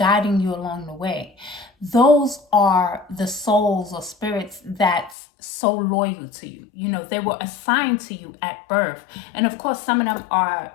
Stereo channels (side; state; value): right; drops out; at 5.2 s